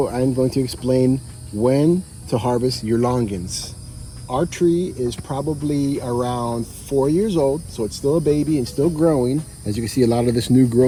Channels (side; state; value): both; identical; correlation 1.00